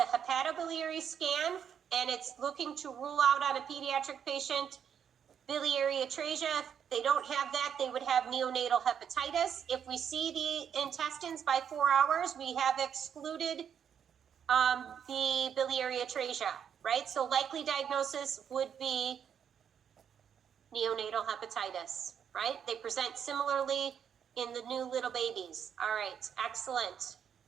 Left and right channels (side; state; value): left; quieter; 8.2 dB